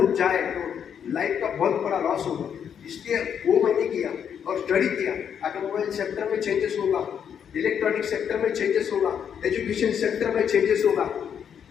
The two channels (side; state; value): right; quieter; 8.1 dB